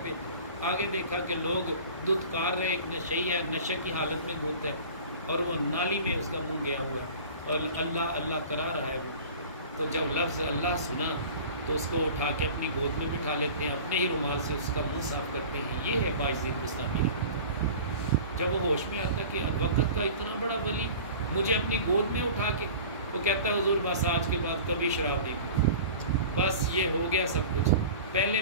پہ، آگے دیکھا کہ لوگ دودھ کار رہے، ایک نشئی ہے، نشے کی حالت میں دودھ ہے، اور وہ نالی میں اس کا منہ گیا ہوا ہے اور اللہ اللہ کرا رہا ہے وہ، تو جب لفظ اللہ سنا تو اس کو اٹھا کے اپنی گود میں بٹھا لیتے ہیں، اپنے ہی رومال سے اس کا منہ صاف کرتے ہیں۔ یہ ہے باجزید بستامی۔ جب وہ ہوش میں آتا ہے کہ وقت کا اتنا بڑا ولی مجھے اپنی گود میں اٹھا کے، وہ کہتا ہے حضور بس آج کے بعد کبھی شراب نہیں پی، بس یہ ہو گیا سب کچھ، پہلے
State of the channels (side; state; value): both; inverted; correlation -0.40